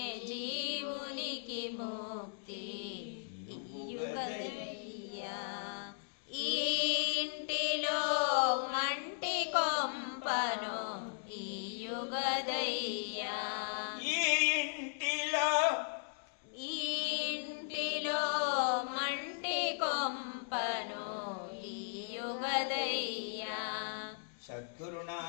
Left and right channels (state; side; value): silent; right; digital silence